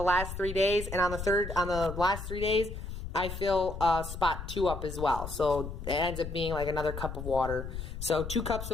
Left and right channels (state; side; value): noise; left; rumble, 8 dB below the sound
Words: last 3 days, and on the last 3 days, I fill spot 2 up as well. So it ends up being like another cup of water. So 2 cups